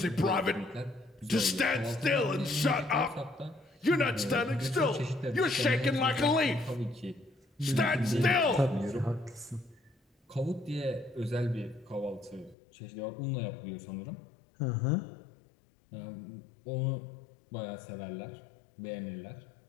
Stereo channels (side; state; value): right; drops out; at 12.6 s